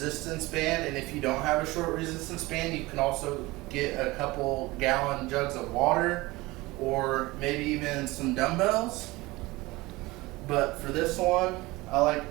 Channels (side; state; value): left; quieter; 21.1 dB